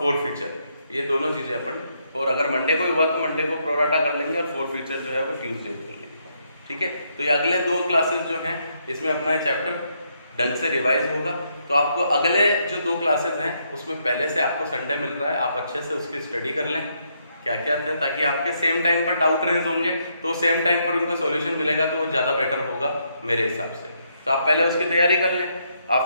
ये दोनों चीजें अपन, और अगर मंडे को हुआ तो मंडे को प्रोराटा कर लेंगे और फॉरफिचर जो है वो ट्यूसडे को कर लेंगे। ठीक है? तो ये अगले 2 क्लासेस जो हैं इसमें अपना ये चैप्टर ढंग से रिवाइज होगा। तो आपको अगले जो 2 क्लासेस हैं उसमें पहले से आपको संडे मिल रहा है, आप अच्छे से उसकी स्टडी कर लें क्या क्या था, ताकि आपके सेम टाइम पर डाउट रेज होंगे तो सेम टाइम पर उनका सॉल्यूशन मिलेगा तो वो ज़्यादा बेटर होगा मेरे हिसाब से। तो आप पहले उसकी तैयारी कर लें,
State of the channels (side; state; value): both; inverted; correlation -0.76